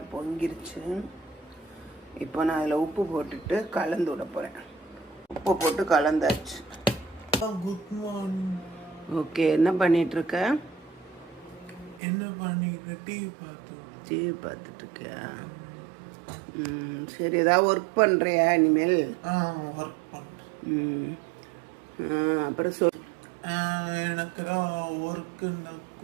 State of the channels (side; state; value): left; drops out; at 12.0 s